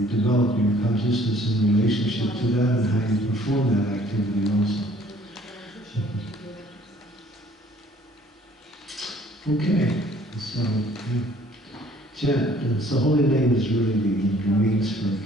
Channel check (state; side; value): normal; both; correlation 0.57